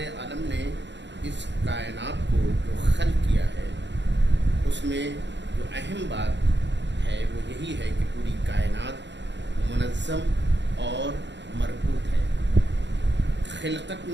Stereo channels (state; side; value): late; left; 0.52 ms